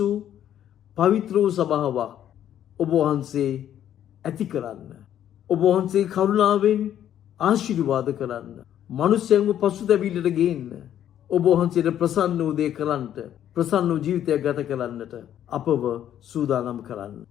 පවිත්‍ර වූ සභාවක් ඔබ වහන්සේ ඇති කරන්න. ඔබ වහන්සේ කරුණාවෙන් ආශිර්වාද කරන්න. මනුෂ්‍යයන්ව පසුතැවිල්ලට ගේන්න. ඔබ වහන්සේට ප්‍රසන්න වූ දේ කරන්නට, ප්‍රසන්න වූ ජීවිතයක් ගත කරන්නට අපව සූදානම් කරන්න.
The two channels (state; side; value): quieter; right; 10.7 dB